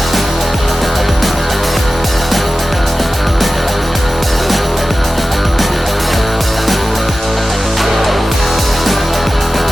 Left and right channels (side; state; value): both; normal; correlation 0.95